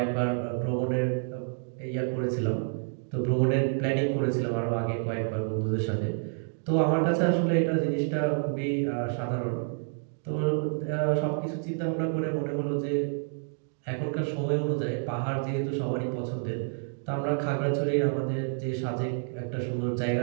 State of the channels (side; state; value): left; silent; digital silence